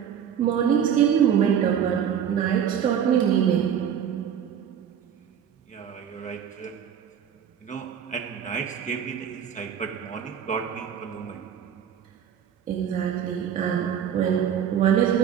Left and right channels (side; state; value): left; quieter; 8.7 dB